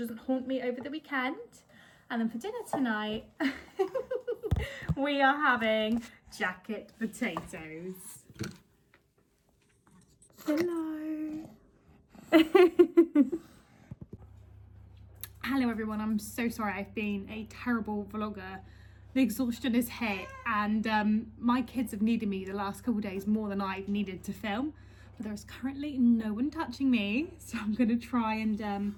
haunt me over the weekend. And then for dinner tonight, we are having jacket potatoes. Hello. Hello everyone, I'm so sorry. I've been a terrible vlogger. The exhaustion is hit and my kids have needed me the last couple of days more than I've needed to film. But there is currently no one touching me. So I'm going to try and,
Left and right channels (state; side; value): identical; both; correlation 1.00